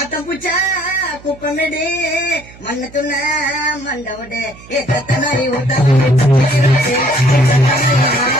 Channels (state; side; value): noise; right; hum, 21 dB below the sound